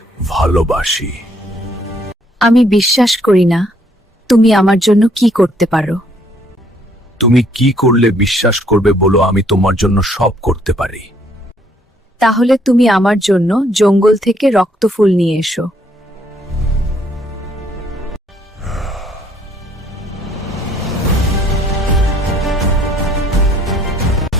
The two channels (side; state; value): both; normal; correlation 0.66